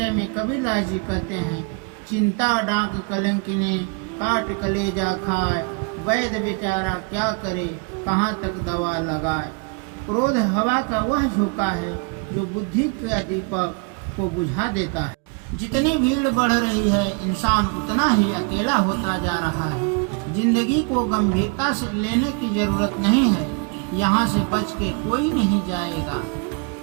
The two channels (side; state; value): left; quieter; 32.2 dB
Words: में कबीरदास जी कहते हैं, चिंता डांक कलंकिनी काट कलेजा खाए, वैद्य बेचारा क्या करे कहाँ तक दवा लगाए। क्रोध हवा का वह झोंका है जो बुद्धि का दीपक को बुझा देता है। जितनी भीड़ बढ़ रही है, इंसान उतना ही अकेला होता जा रहा है। जिंदगी को गंभीरता से लेने की जरूरत नहीं है, यहाँ से बच के कोई नहीं जाएगा।